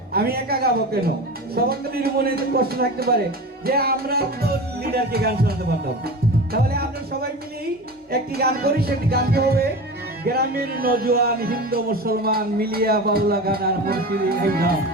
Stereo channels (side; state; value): both; normal; correlation 0.30